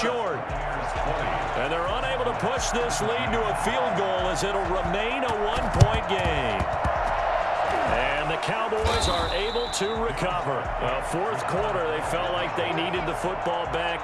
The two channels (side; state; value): both; identical; correlation 1.00